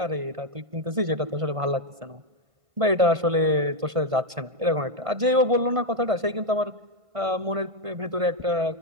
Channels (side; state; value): left; late; 1.5 ms